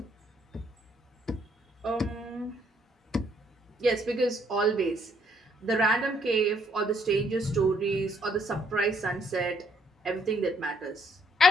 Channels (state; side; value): normal; both; correlation 0.68